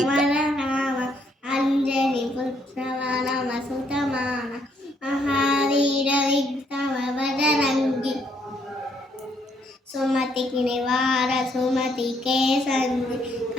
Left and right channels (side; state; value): both; normal; correlation 0.71